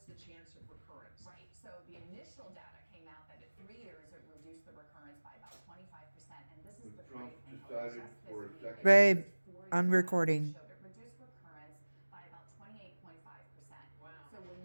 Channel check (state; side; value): inverted; both; correlation -1.00